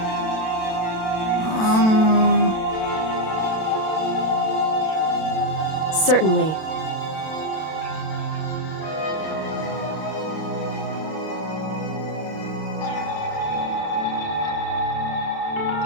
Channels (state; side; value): late; right; 32 ms